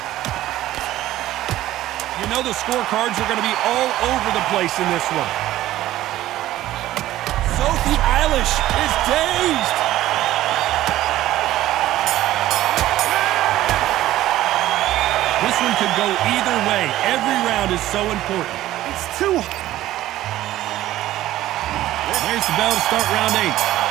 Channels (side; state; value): left; quieter; 14.6 dB